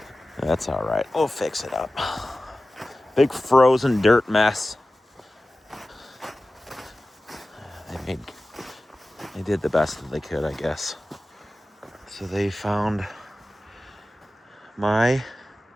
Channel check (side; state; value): both; normal; correlation 0.96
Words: That's all right. We'll fix it up. Big frozen dirt mess. They did the best that they could, I guess. So they found my